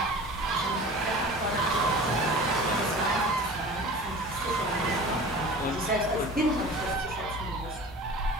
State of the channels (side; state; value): both; normal; correlation 0.38